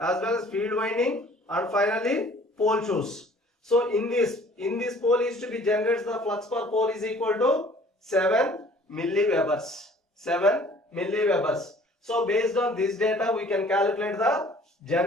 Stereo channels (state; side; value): normal; both; correlation 0.53